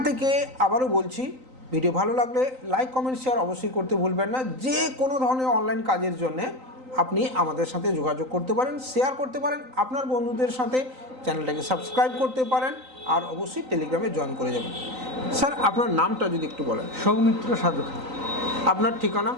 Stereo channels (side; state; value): left; late; 3.9 ms